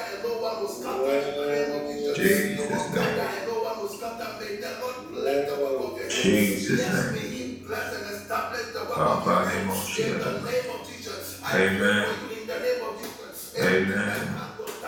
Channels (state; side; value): identical; both; correlation 1.00